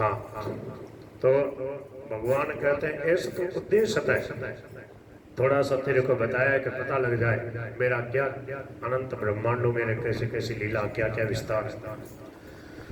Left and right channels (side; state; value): both; identical; correlation 1.00